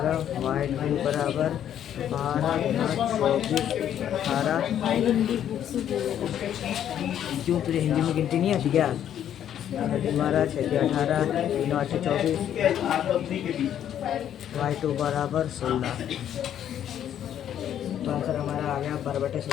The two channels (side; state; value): right; quieter; 10.2 dB